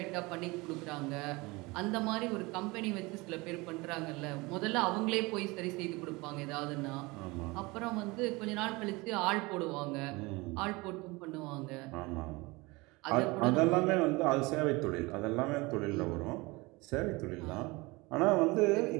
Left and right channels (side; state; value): left; quieter; 23.9 dB